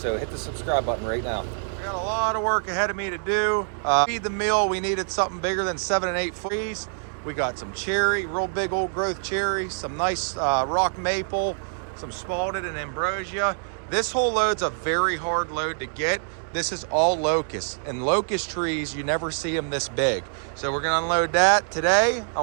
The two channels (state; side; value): silent; left; 61 dB below the other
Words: hit the subscribe button right now. I got a lot of work ahead of me to do. Feed the mill, we needed something bigger than 7 and 8 trees. We got some cherry, real big old growth cherry, some nice rock maple, some spalted and ambrosia. This whole load's a very hard load to get. This is all locust, and locust trees, you never see them this big. So we're gonna unload that today. I